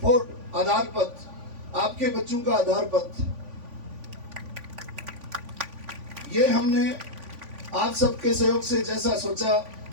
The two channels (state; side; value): late; left; 3.5 ms